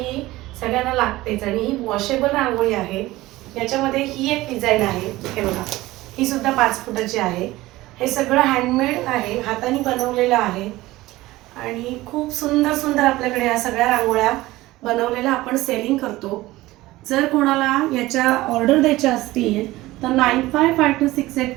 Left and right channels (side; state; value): left; quieter; 18.1 dB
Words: सगळ्यांना लागतेच आणि ही वॉशेबल रांगोळी आहे. याच्यामध्ये ही एक डिझाईन आहे, हे बघा, ही सुद्धा 5 फुटाची आहे. हे सगळं हँडमेड आहे, हाताने बनवलेलं आहे आणि खूप सुंदर सुंदर आपल्याकडे या सगळ्या रांगोळ्या बनवलेल्या आपण सेलिंग करतो. जर कोणाला याच्या ऑर्डर द्यायच्या असतील तर